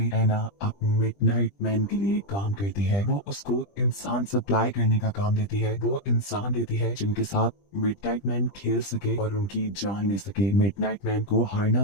एना अब मिडनाइट मैन के लिए काम करती है। वो उसको इंसान सप्लाई करने का काम देती है। वो इंसान देती है जिनके साथ मिडनाइट मैन खेल सके और उनकी जान ले सके। मिडनाइट मैन को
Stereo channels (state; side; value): late; right; 20 ms